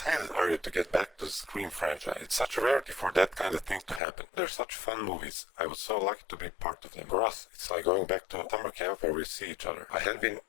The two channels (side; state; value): right; drops out; at 4.0 s